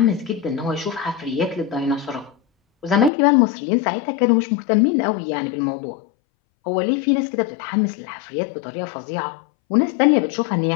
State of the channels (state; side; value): drops out; right; at 3.1 s